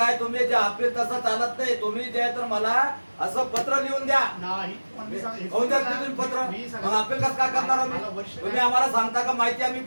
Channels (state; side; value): inverted; both; correlation -1.00